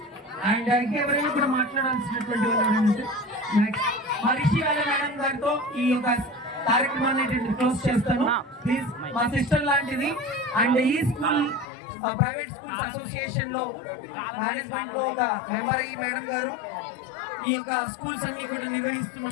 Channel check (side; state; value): right; drops out; at 11.7 s